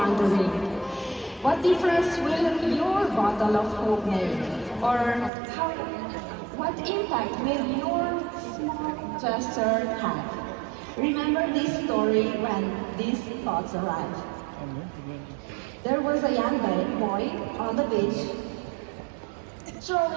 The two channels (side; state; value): left; drops out; at 5.3 s